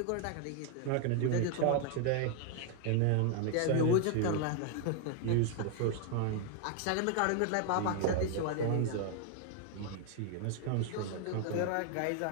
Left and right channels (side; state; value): both; different; correlation 0.00